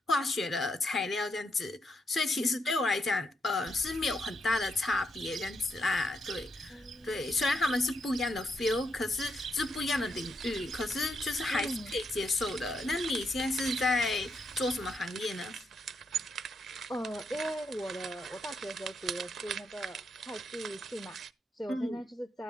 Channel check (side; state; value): both; normal; correlation 0.80